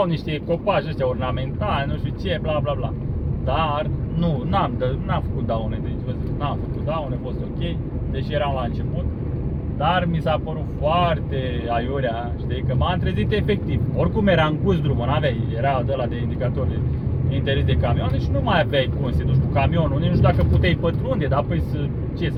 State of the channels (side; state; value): both; identical; correlation 1.00